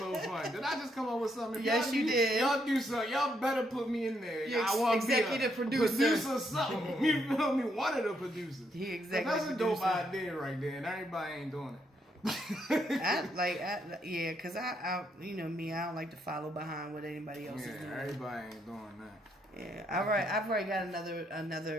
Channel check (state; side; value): normal; both; correlation 0.75